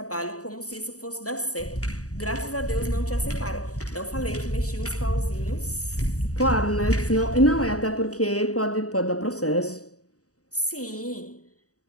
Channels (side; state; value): right; late; 0.66 ms